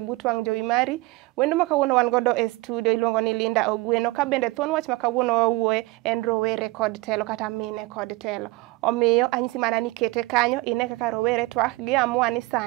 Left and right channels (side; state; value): left; quieter; 21.9 dB